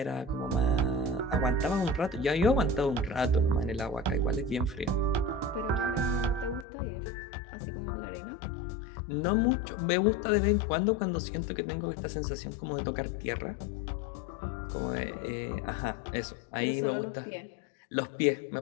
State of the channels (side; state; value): right; drops out; at 6.7 s